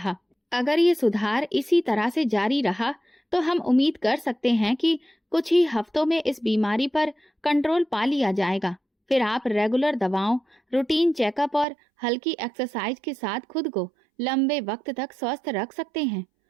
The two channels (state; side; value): drops out; left; at 11.7 s